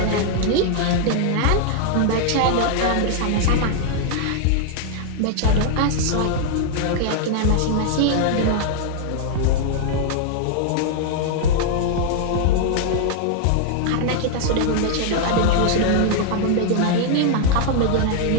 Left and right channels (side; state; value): both; different; correlation 0.00